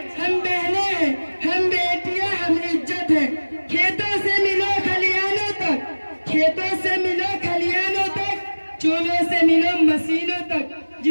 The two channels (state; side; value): inverted; both; correlation -1.00